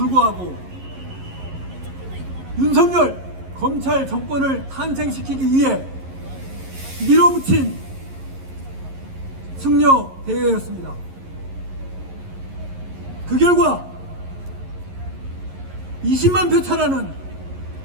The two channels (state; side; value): late; left; 11 ms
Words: 윤석열 검찰 정권을 탄생시키기 위해 밀어붙인 승려 대회였습니다. 그 결과 20만 표 차라는